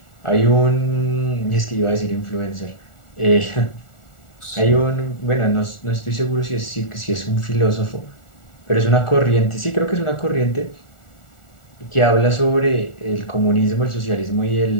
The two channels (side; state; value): right; late; 1.4 ms